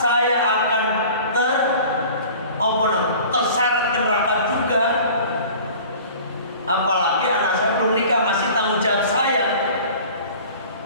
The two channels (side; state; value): both; inverted; correlation -0.44